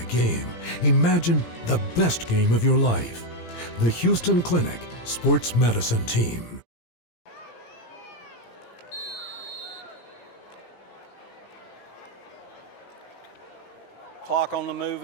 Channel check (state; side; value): late; right; 17 ms